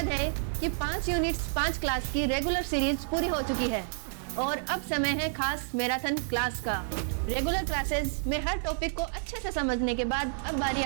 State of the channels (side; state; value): left; silent; 55 dB below the other